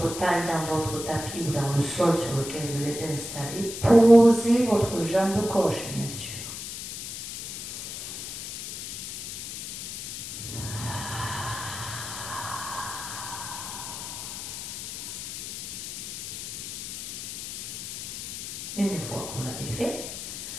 taille dans votre tapis ou dans le sol sur lequel vous êtes installé, posez votre jambe gauche, bien sûr. Une fois que vous l'avez fait,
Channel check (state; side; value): noise; left; hiss, 8 dB below the sound